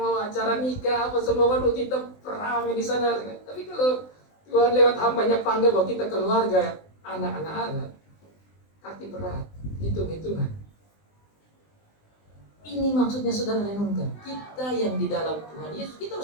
acara nikah, apa semua, waduh kita rame di sana. Tapi kalau Tuhan lewat hambanya panggil bahwa kita keluarga, anak-anak Allah, kaki berat, hitung-hitungan. Ini maksudnya saudara renungkan. Kita yang di dalam Tuhan Yesus, kita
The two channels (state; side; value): late; right; 20 ms